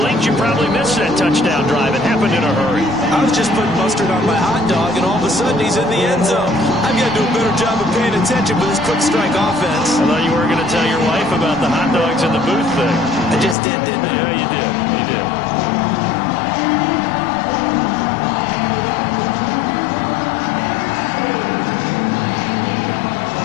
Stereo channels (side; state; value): right; drops out; at 13.6 s